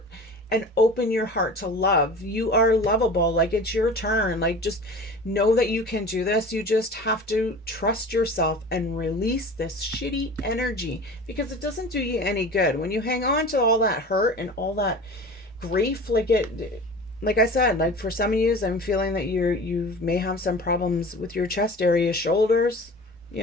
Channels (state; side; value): normal; both; correlation 0.38